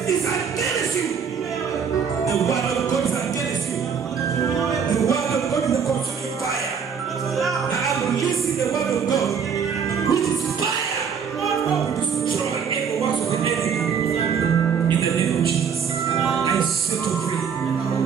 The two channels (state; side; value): quieter; left; 6.8 dB